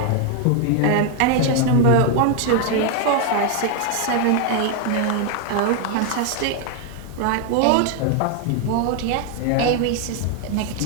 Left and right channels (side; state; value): both; different; correlation 0.01